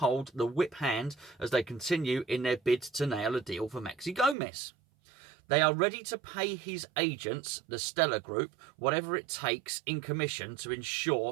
the whip hand as they continue in their bid to nail a deal for Maxi Gomez. They are ready to pay his agents, the Stella Group, whatever it takes in commission to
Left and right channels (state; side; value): drops out; left; at 4.4 s